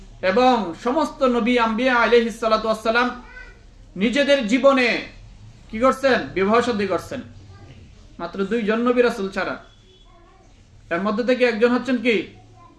এবং সমস্ত নবী আম্বিয়া আলাইহিস সালাতু ওয়াস সালাম নিজেদের জীবনে কি করছেন? বিবাহ শাদী করছেন। মাত্র দুইজন নবী রাসূল ছাড়া। এর মধ্যে থেকে একজন হচ্ছেন কি?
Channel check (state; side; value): identical; both; correlation 1.00